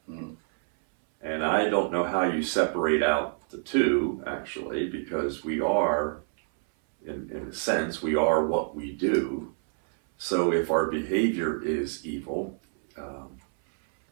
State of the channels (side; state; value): left; silent; 60 dB below the other